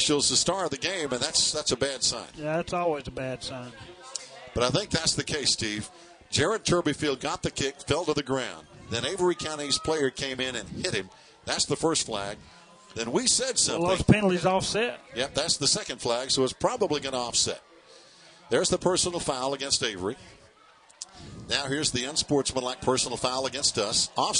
the star of the game, and that's a bad sign. Yeah, that's always a bad sign. But I think that's the case, Steve. Jared Turbyfield got the kick, fell to the ground. Then Avery County's player came in and hit him. That's the first flag. Then we said something. Well, those penalties offset. Yep, that's the second flag, so it's probably going to offset. There's the personal foul against Avery. Now here's the unsportsmanlike personal foul against us,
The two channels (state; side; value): identical; both; correlation 1.00